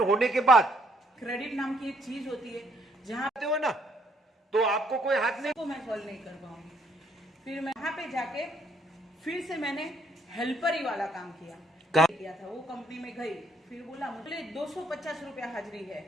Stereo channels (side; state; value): both; normal; correlation 0.69